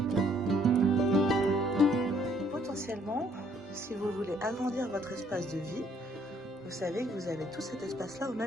Potentiellement, si vous voulez agrandir votre espace de vie, vous savez que vous avez tout cet espace-là au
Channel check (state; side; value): normal; both; correlation 0.64